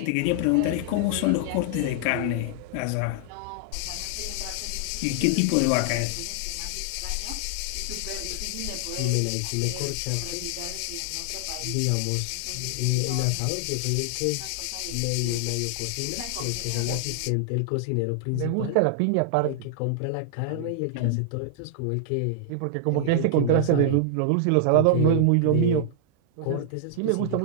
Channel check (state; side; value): different; both; correlation -0.01